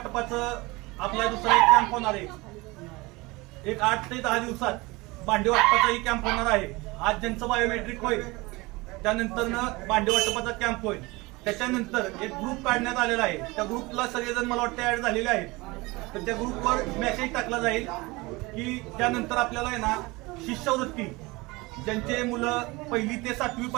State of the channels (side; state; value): left; quieter; 23.2 dB